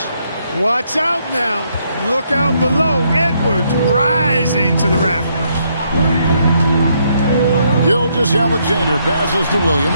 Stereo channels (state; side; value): inverted; both; correlation -0.73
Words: Watch out now. Look out below. Edwards rising to the rafters. Gilgeous-Alexander passes to